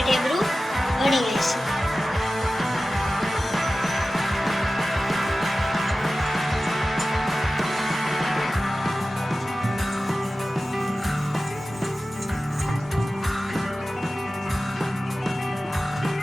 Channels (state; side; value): normal; both; correlation 0.95